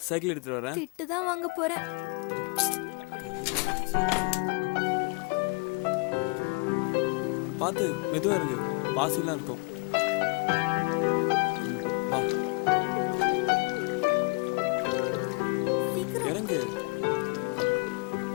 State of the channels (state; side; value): quieter; right; 31.9 dB